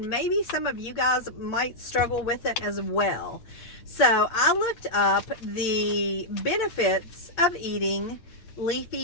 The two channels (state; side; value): late; right; 8.6 ms